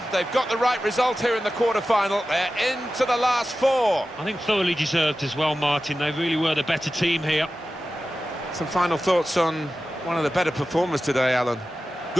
They've got the right result here in the quarter-final. They're into the last 4. I think thoroughly deserved as well, Martin. They really were the better team here. Some final thoughts on one of the better performers today, Alan.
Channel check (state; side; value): normal; both; correlation 0.94